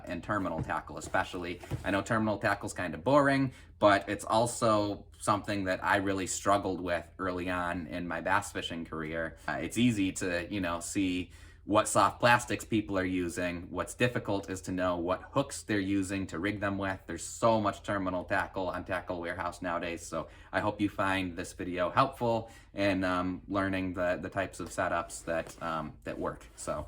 terminal tackle especially. I know terminal tackle's kind of boring, but it's also something that I really struggled with early on in my bass fishing career. It's easy to, see what soft plastics people are using. What's difficult is to know what hooks they're using to rig them with. There's so much terminal tackle on Tackle Wearhouse nowadays, so I hope you find this video helpful in learning the types of setups that work. So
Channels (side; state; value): both; identical; correlation 1.00